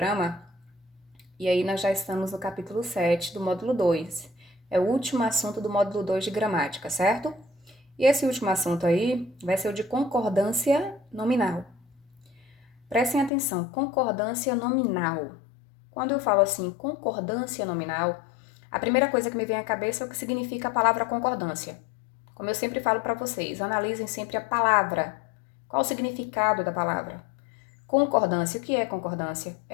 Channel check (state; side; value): drops out; right; at 13.3 s